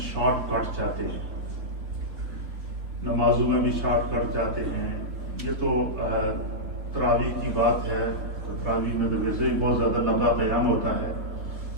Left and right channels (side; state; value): left; late; 3.7 ms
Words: شارٹ کٹ چاہتے ہیں، نمازوں میں بھی شارٹ کٹ چاہتے ہیں۔ یہ تو تراویح کی بات ہے، تراویح میں تو ویسے ہی بہت زیادہ لمبا قیام ہوتا ہے